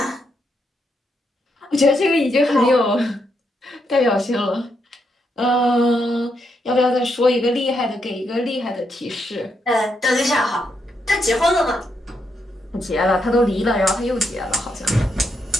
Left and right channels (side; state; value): both; normal; correlation 0.80